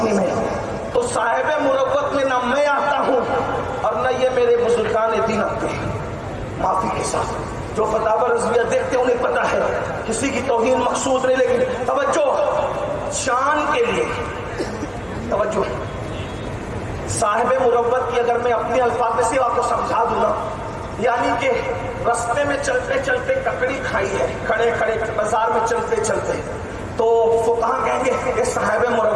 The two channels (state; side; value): identical; both; correlation 1.00